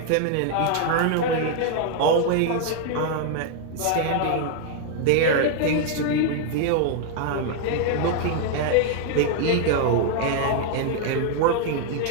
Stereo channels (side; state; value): both; different; correlation 0.00